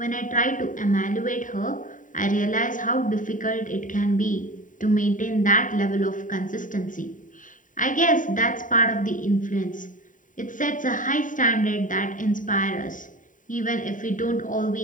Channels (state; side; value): late; right; 0.38 ms